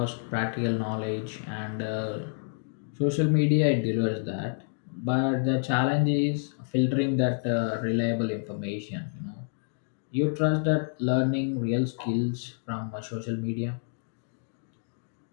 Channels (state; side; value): silent; right; digital silence